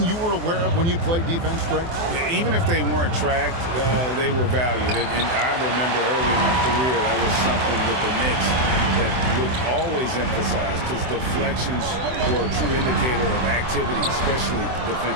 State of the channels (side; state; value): left; late; 24 ms